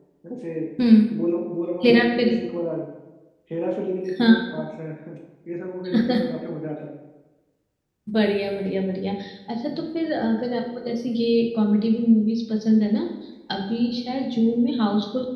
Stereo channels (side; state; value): both; identical; correlation 1.00